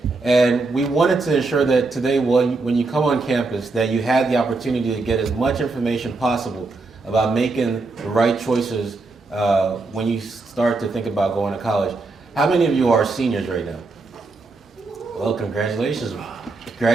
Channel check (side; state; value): left; quieter; 3.6 dB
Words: And we wanted to ensure that today, when you come on campus, that you had the opportunity to get as much information possible about making the right choices when you start to think about going to college. How many of you are seniors right now? Well, congratulations.